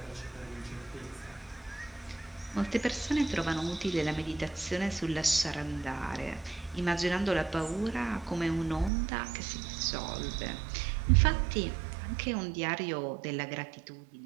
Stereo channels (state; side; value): drops out; left; at 8.9 s